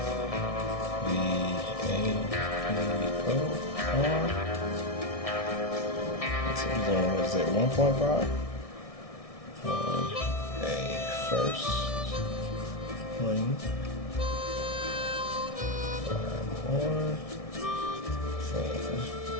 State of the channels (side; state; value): right; late; 1.6 ms